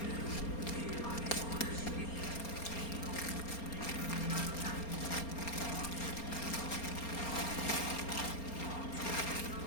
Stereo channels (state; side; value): late; right; 4.3 ms